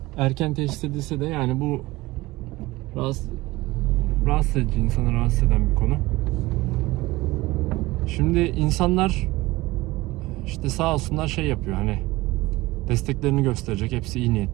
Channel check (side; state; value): left; quieter; 19.8 dB